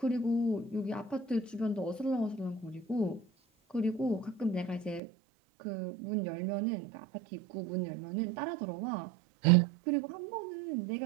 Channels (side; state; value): left; drops out; at 5.0 s